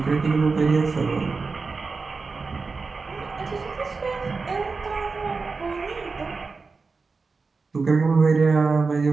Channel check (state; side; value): quieter; left; 4.3 dB